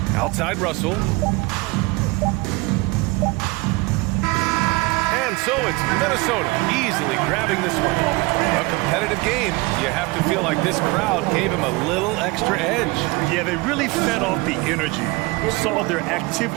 Outside Russell. And so it's Minnesota easily grabbing this one. A competitive game. You have to feel like this crowd gave him a little extra edge. Yeah, they really fed off the energy. You saw their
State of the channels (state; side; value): quieter; left; 23.7 dB